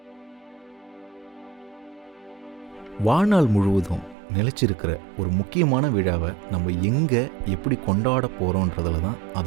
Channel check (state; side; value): drops out; left; at 4.2 s